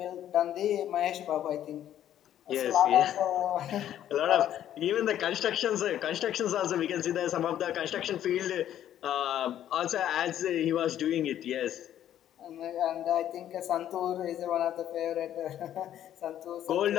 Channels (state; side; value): quieter; right; 11.2 dB